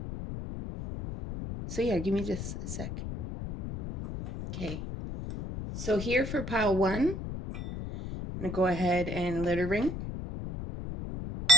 So yeah, give me just a sec. Okay. So here for pile 1, I'm going to go ahead and let it ring.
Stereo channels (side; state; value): left; noise; rumble, 7 dB below the sound